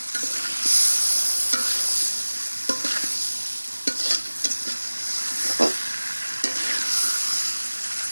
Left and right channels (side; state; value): both; inverted; correlation -1.00